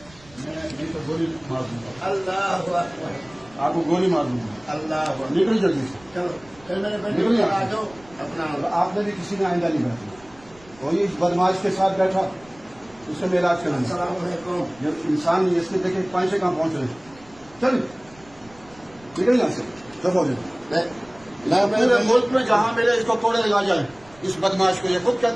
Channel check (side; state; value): right; noise; rumble, 25 dB below the sound